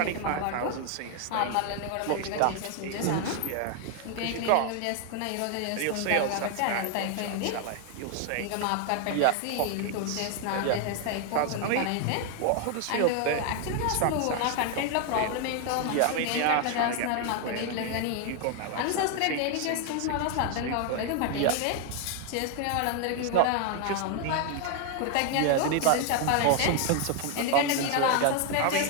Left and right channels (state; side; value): different; both; correlation 0.00